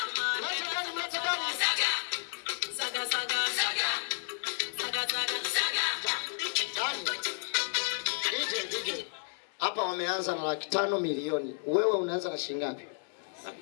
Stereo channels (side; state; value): right; silent; 56 dB below the other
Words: Mlete Dani. DJ. Hapa wameanza na 500,000 milioni. Wewe unaanza na shilingi ngapi?